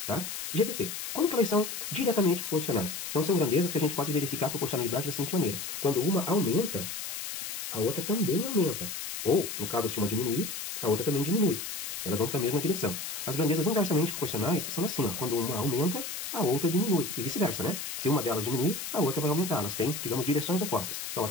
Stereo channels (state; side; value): noise; left; hiss, 6 dB below the sound